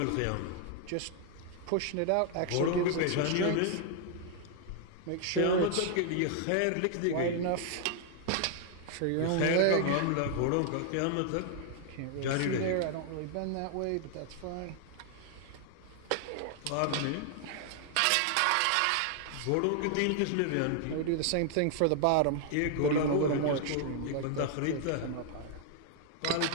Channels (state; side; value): different; both; correlation 0.00